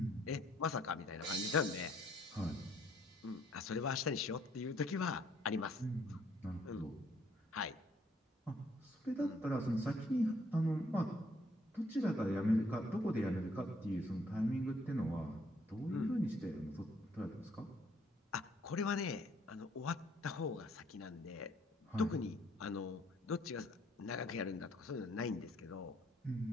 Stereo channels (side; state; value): both; normal; correlation 0.66